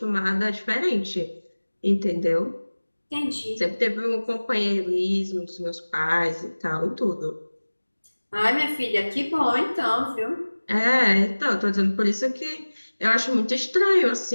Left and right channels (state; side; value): inverted; both; correlation -1.00